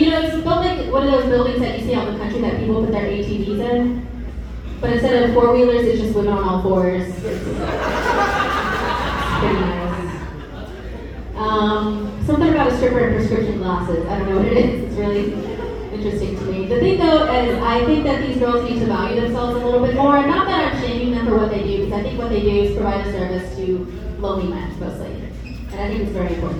built like one of those buildings that you see out in the country that people put their ATVs in. But instead of 4-wheelers, it's just women on all 4s. It's pretty nice. Something about a stripper and prescription glasses. I don't know what it is. It's really interesting to me. The thing though is I think that these girls need to value themselves a little bit more. And not that I'm shaming them for what they do, because I think what they do is provide a service to lonely men mostly. And I think it's very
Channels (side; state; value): both; identical; correlation 1.00